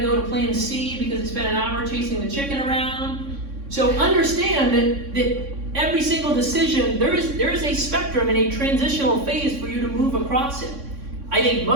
go to plan C because they spent an hour chasing the chicken around. So understand that every single decision, there is a spectrum and a transitional phase for you to move across it. I think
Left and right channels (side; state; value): left; late; 3.6 ms